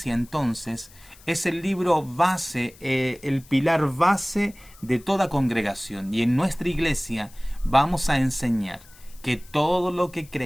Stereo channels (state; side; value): noise; left; hiss, 24 dB below the sound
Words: entonces, es el libro base, el pilar base de toda congregación. Y en nuestra iglesia vamos a enseñar que todo lo que